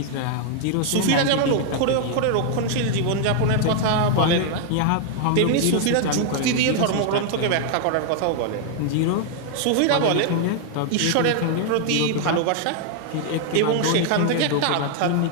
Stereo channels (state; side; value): different; both; correlation 0.00